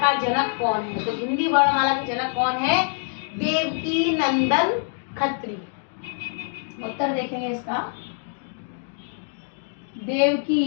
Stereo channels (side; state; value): right; silent; 62 dB below the other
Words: जनक कौन है? तो हिंदी वर्णमाला के जनक कौन है? देवकी नंदन खत्री। उत्तर देखेंगे इसका,